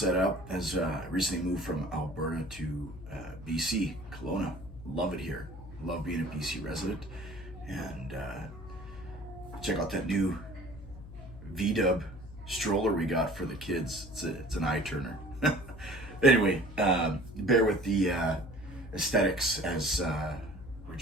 up as I recently moved from Alberta to BC, Kelowna. Love it here. Love being a BC resident. And check out that new V-dub stroller we got for the kids. It's an eye turner. Anyway, bear with the aesthetics as we're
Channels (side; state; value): left; noise; hum, 15 dB below the sound